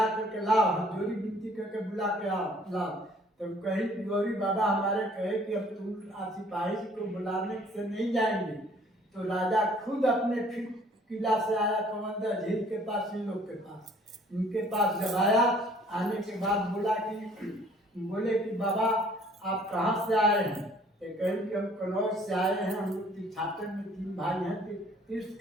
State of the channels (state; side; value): normal; both; correlation 0.57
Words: करके लाओ, जोरी विनती करके बुला के लाओ। तो कहीं गौरी बाबा हमारे कहे कि अब तुम सिपाही को बुलाने से नहीं जाएंगे। तो राजा खुद अपने फिर किला से आया, कमंदर झील के पास, इन लोग के पास, इनके पास जब आया, आने के बाद बोले कि बाबा आप कहाँ से आए हैं। तो कहीं कि हम कनौज से आए हैं, हम लोग तीर्थाटन में 3 भाई हैं, तीर्थ